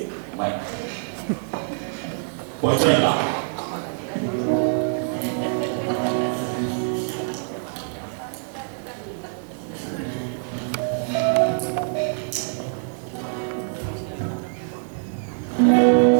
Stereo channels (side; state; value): left; silent; 62 dB below the other